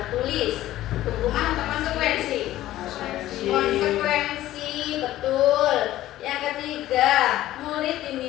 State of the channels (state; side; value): quieter; right; 14.5 dB